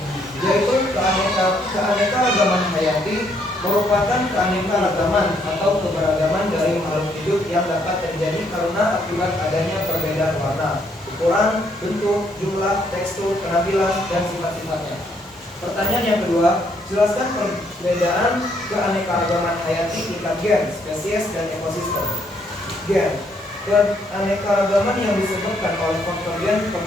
Yaitu keanekaragaman hayati merupakan keanekaragaman atau keberagaman dari makhluk hidup yang dapat terjadi karena akibat adanya perbedaan warna, ukuran, bentuk, jumlah, tekstur, penampilan, dan sifat-sifatnya. Pertanyaan yang kedua, Jelaskan perbedaan keanekaragaman hayati tingkat gen, spesies, dan ekosistem. Gen. Keanekaragaman yang disebabkan oleh faktor gen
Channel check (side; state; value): both; normal; correlation 0.71